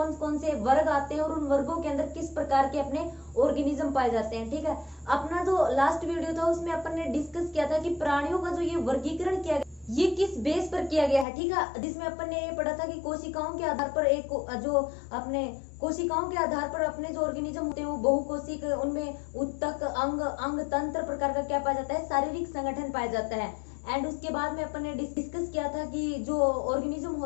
कौन से वर्ग आते हैं और उन वर्गों के अंदर किस प्रकार के अपने ऑर्गेनिज्म पाए जाते हैं, ठीक है। अपना जो लास्ट वीडियो था उसमें अपन ने डिस्कस किया था कि प्राणियों का जो ये वर्गीकरण किया ये किस बेस पर किया गया है, ठीक है, जिसमें अपन ने ये पढ़ा था कि कोशिकाओं के आधार पर एक जो अपने कोशिकाओं के आधार पर अपने जो ऑर्गेनिज्म होते हैं वो बहुकोशिक, उनमें उत्तक, अंग, अंग तंत्र प्रकार का क्या पाया जाता है, शारीरिक संगठन पाया जाता है। एंड उसके बाद में अपन ने डिस्कस किया था कि जो ऑर्गेनिज्म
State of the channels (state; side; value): drops out; right; at 11.2 s